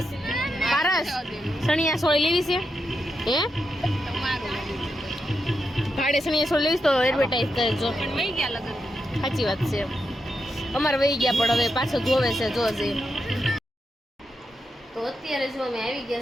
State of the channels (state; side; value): normal; both; correlation 0.85